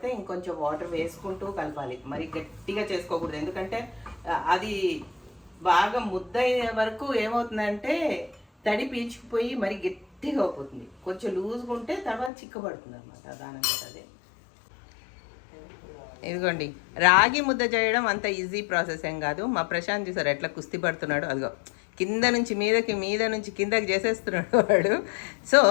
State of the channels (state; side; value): drops out; right; at 12.3 s